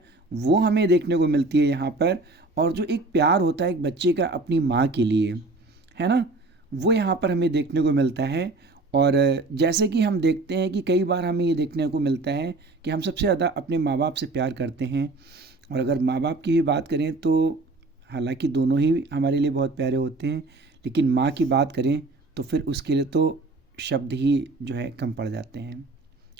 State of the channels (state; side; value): quieter; left; 3.2 dB